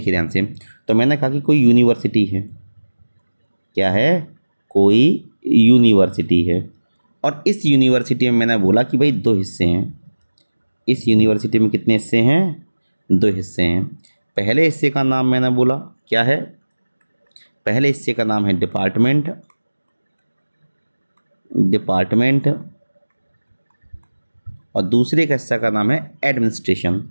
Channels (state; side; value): inverted; both; correlation -1.00